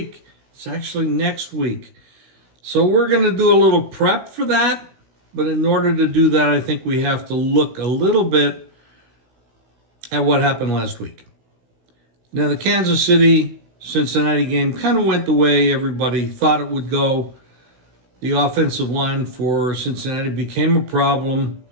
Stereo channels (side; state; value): left; late; 16 ms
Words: It's actually next week. So we're going to do a little prep for that. But in order to do that, I think we have to look a little bit at what happened last week. Now, the Kansas City-Cincinnati game kind of went the way everybody thought it would go. The offensive line for Cincinnati became a problem,